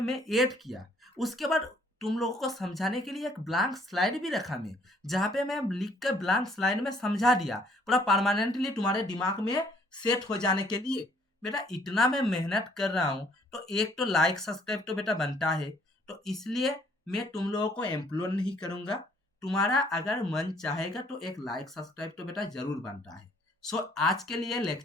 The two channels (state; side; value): normal; both; correlation 0.63